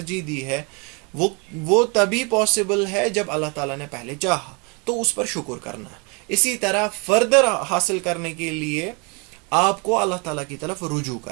دی ہے، وہ تبھی پاسبل ہے جب اللہ تعالیٰ نے پہلے چاہا، تو اس پر شکر کرنا ہے. اسی طرح فردر حاصل کرنے کے لیے آپ کو اللہ تعالیٰ کی طرف رجوع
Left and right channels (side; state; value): left; quieter; 32.1 dB